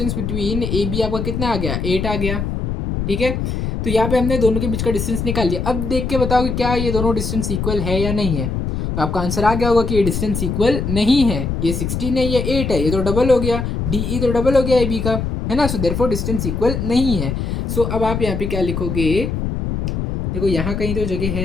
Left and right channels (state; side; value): noise; left; rumble, 2 dB below the sound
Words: between A B आपका कितना आ गया, 8 आ गया। ठीक है, तो यहाँ पे हमने दोनों के बीच का डिस्टेंस निकाल लिया। अब देख के बताओ कि क्या ये दोनों डिस्टेंस इक्वल है या नहीं है। तो आपका आंसर आ गया होगा कि ये डिस्टेंस इक्वल नहीं है, ये 16 है, ये 8 है, ये तो डबल हो गया, डी ई तो डबल हो गया ए बी का, है ना। सो देयरफॉर डिस्टेंस इक्वल नहीं है। सो अब आप यहाँ पे क्या लिखोगे, देखो यहाँ कहीं तो जगह